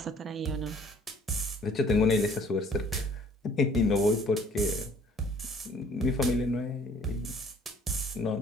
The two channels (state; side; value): normal; both; correlation 0.57